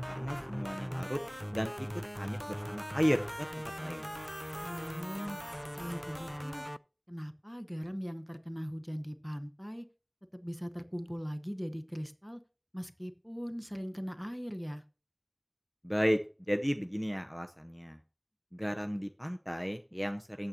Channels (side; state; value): both; identical; correlation 1.00